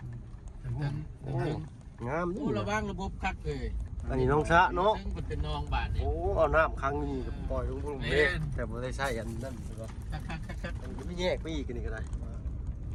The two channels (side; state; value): both; identical; correlation 1.00